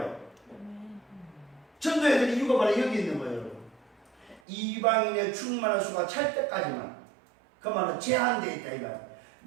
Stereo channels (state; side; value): drops out; left; at 4.4 s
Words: 전도해야 될 이유가 바로 여기 있는 거예요. 이방인의 충만한 수가 찰 때까지만. 그 말은 제한되어 있다 이